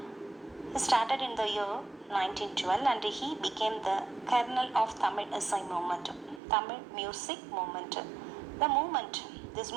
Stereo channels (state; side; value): drops out; left; at 6.4 s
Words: He started in the year 1912 and he became the kernel of Tamil Isai movement, Tamil music movement. This